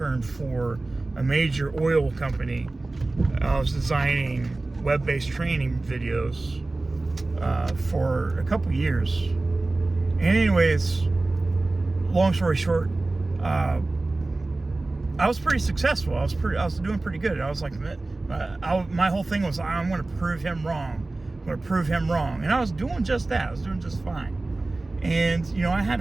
for a major oil company. I was designing web-based training videos for a couple years. And anyways, long story short, I was pretty successful. I was doing pretty good. I was like, my whole thing was, I'm going to prove him wrong. I'm going to prove him wrong. And I was doing just that. I was doing just fine. And, you know, I had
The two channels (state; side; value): quieter; left; 3.1 dB